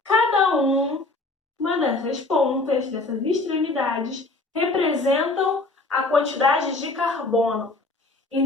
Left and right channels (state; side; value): quieter; right; 3.2 dB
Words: cada uma dessas pontas, dessas extremidades, representam a quantidade de carbono.